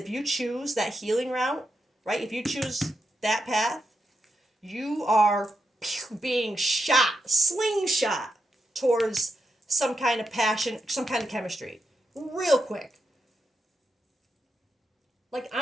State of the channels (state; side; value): normal; both; correlation 0.85